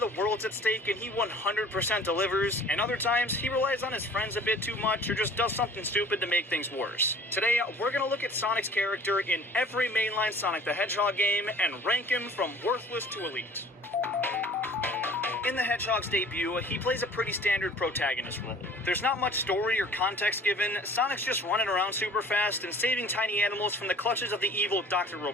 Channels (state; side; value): normal; both; correlation 0.48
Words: world's at stake and he 100% delivers, and other times he relies on his friends a bit too much or just does something stupid to make things worse. Today, we're gonna look at Sonic's character in every mainline Sonic the Hedgehog game and rank him from worthless to elite. In the Hedgehog's debut, he plays a pretty standard protagonist role. There's not much story or context given, Sonic's just running around super fast and saving tiny animals from the clutches of the evil Dr.